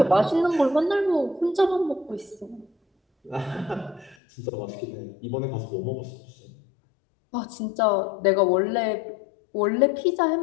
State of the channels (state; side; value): drops out; right; at 4.2 s